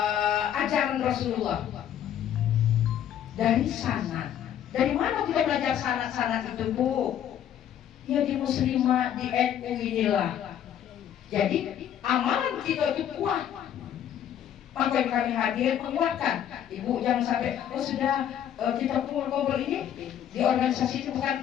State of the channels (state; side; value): quieter; right; 10.1 dB